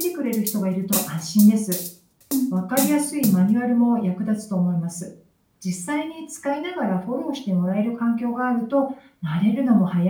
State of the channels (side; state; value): both; identical; correlation 1.00